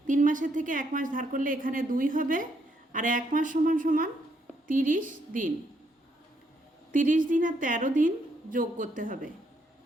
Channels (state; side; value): normal; both; correlation 0.74